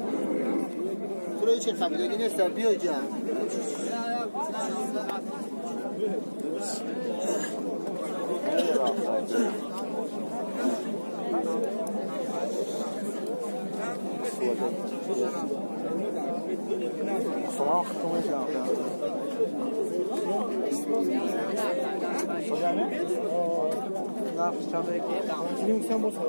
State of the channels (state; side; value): inverted; both; correlation -1.00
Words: Burayı çek tabii de yine serpiyor can. Soğuk konuşacağım ya. Hocam ne? Ne yapacağım belki? Şimdi sen bu